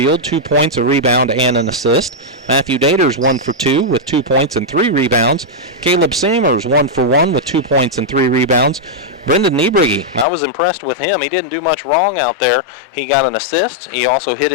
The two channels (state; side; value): drops out; right; at 10.2 s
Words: 2 points, a rebound, and an assist. Matthew Daters, 1 for 2 with 2 points and 3 rebounds. Caleb Samers, 1 for 1 with 2 points and 3 rebounds. Brendan Niebrigi, I was impressed with him. He didn't do much wrong out there. He got an assist. He also hit